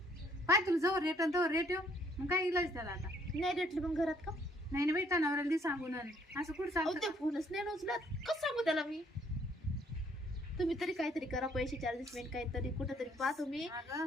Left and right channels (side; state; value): both; normal; correlation 0.65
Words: पाय तुला जवळ रेट आणि तवर रेट येऊ, मग काय इलाज त्याला आता. नाही रेटले मग घरात का? नाही ना बाई, तनावराला दे सांगून आले. असं कुठं अहो सांगतो ते फोनच नाही उचलत, कसं सांगू त्याला मी? तुम्ही तरी काहीतरी करा, पैसे चार्जेस काहीतरी कुठं तरी पहा तुम्ही. अगं